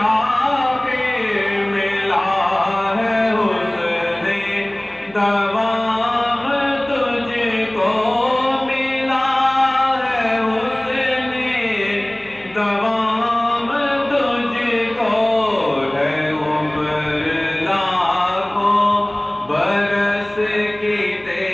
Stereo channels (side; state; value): left; noise; hum, 29 dB below the sound